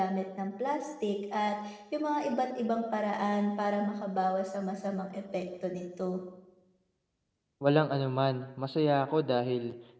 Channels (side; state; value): both; identical; correlation 1.00